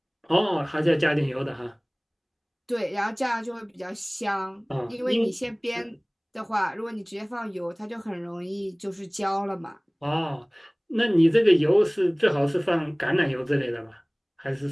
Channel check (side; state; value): both; identical; correlation 1.00